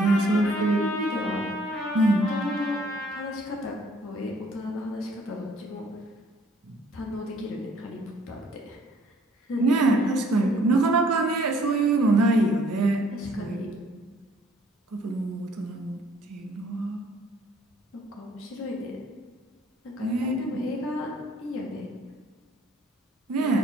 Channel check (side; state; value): both; normal; correlation 0.60